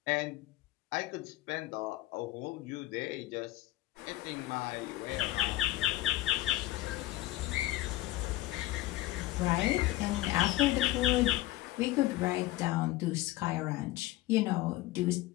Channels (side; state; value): right; quieter; 17.0 dB